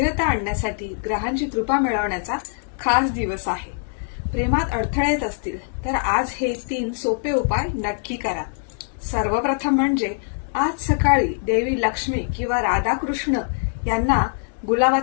आणण्यासाठी ग्रहांची कृपा मिळवण्याचा खास दिवस आहे. प्रेमात अडथळे येत असतील तर आज हे 3 सोपे उपाय नक्की करा. सर्वप्रथम म्हणजे आज सकाळी देवी लक्ष्मी किंवा राधाकृष्ण यांना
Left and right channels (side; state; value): right; silent; 64 dB below the other